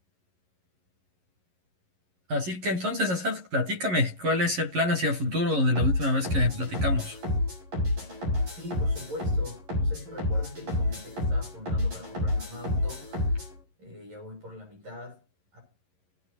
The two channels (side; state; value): left; late; 11 ms